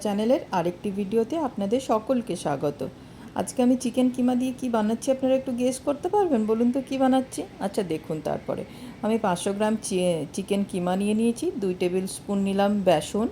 চ্যানেলের আরেকটি ভিডিওতে আপনাদের সকলকে স্বাগত। আজকে আমি চিকেন কিমা দিয়ে কি বানাচ্ছি আপনারা একটু গেস করতে পারবেন? বলুন তো কী বানাচ্ছি? আচ্ছা দেখুন, তারপরে আমি 500 গ্রাম চিকেন কিমা নিয়ে নিয়েছি। 2 টেবিল স্পুন নিলাম বেসন,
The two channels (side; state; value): both; identical; correlation 1.00